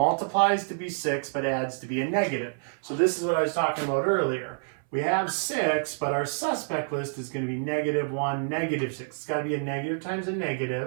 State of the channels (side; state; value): left; silent; 60 dB below the other